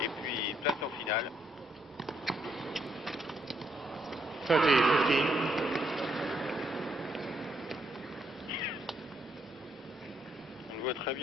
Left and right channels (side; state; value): both; normal; correlation 0.75